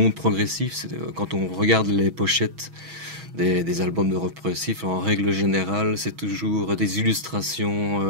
progressif. Quand on regarde les pochettes des albums de rock progressif, en règle générale, c'est toujours des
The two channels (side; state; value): left; late; 6.2 ms